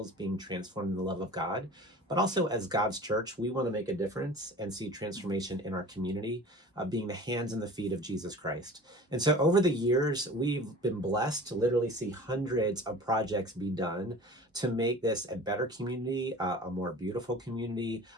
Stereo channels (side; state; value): both; normal; correlation 0.41